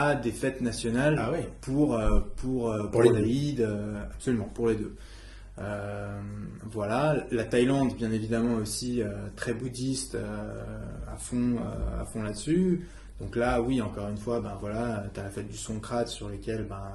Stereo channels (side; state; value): both; identical; correlation 1.00